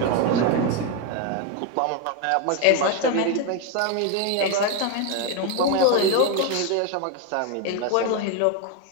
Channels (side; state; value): both; different; correlation 0.02